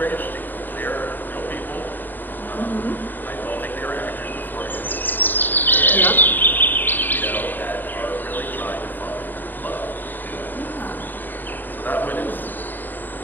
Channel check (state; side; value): late; right; 0.090 ms